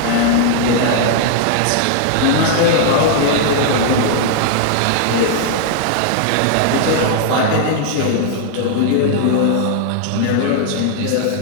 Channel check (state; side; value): different; both; correlation -0.01